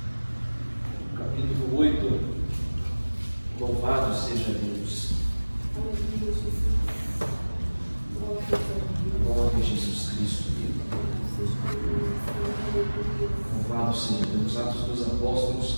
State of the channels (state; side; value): inverted; both; correlation -1.00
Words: Capítulo 8, louvado seja Deus. Glória a Jesus Cristo. Louvado seja Deus. Atos dos Apóstolos,